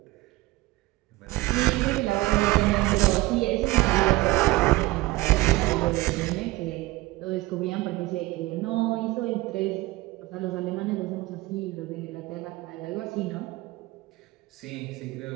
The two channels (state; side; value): quieter; left; 19.8 dB